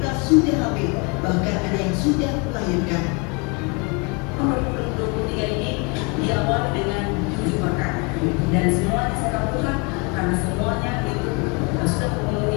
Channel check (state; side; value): quieter; right; 30.8 dB